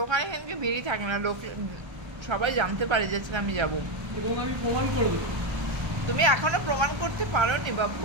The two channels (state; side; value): late; left; 1.3 ms